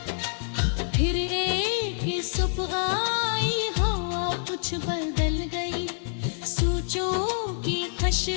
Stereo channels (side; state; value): right; silent; digital silence